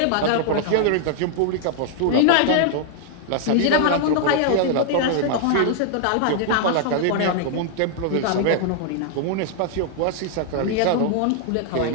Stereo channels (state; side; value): different; both; correlation 0.00